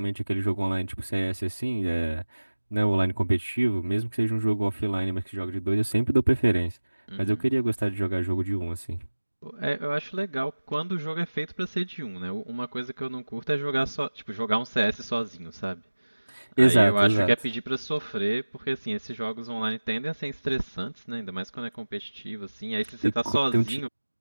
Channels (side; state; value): both; inverted; correlation -1.00